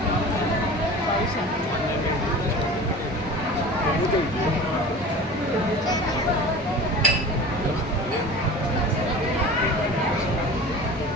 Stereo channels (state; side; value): normal; both; correlation 0.37